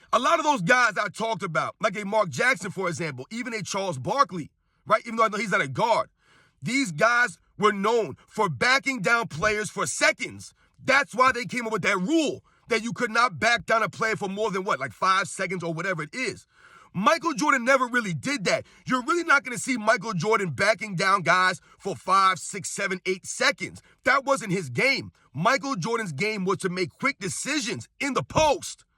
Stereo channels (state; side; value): identical; both; correlation 1.00